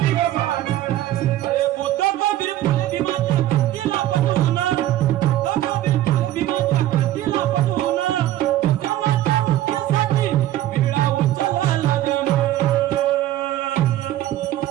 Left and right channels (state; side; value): quieter; left; 13.8 dB